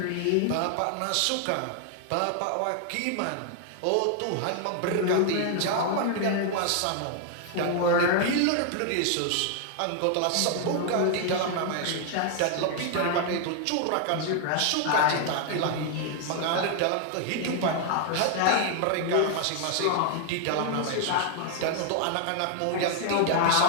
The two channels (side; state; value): both; different; correlation 0.00